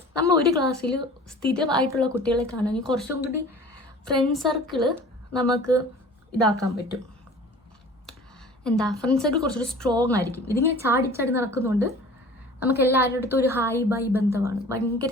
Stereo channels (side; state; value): both; normal; correlation 0.44